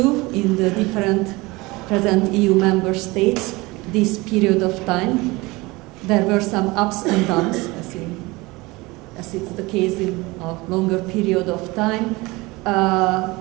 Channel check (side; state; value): left; quieter; 22.7 dB